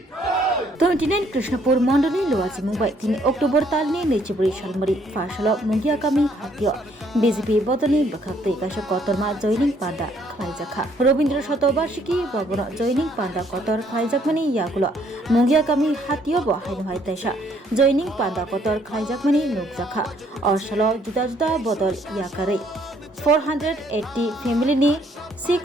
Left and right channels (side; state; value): both; normal; correlation 0.66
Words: 29 कृष्णपुर मंडली लोवासी मुंबई 3 अक्टोबर तालनी नेचिबुरी शालमरी फाशल मुंगिया कामी हातियो बीजेपी बदलनि बखाक्ते गाश कतरमा जयनिंग पांडा खाइजाखा रवींद्र शतवार्षिकी भवन जयनिंग पांडा कतर खाइजाकमानि यागुलो मुंगिया कामी हातियो ब हाइनहाय तैसा जयनिंग पांडा कतर खाइजाकमानि नुकजाखा अरसालो जुदा जुदा बदल याकारै 480 फैमिलीनि